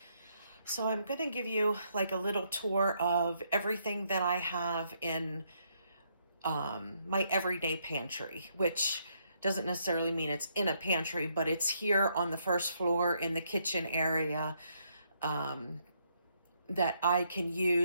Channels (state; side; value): inverted; both; correlation -0.74